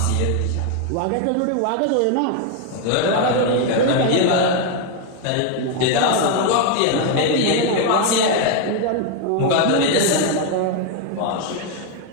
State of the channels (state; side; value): different; both; correlation 0.01